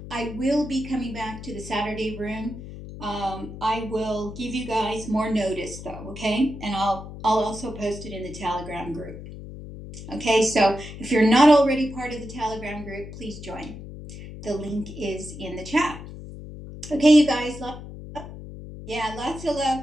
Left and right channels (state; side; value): noise; left; hum, 12 dB below the sound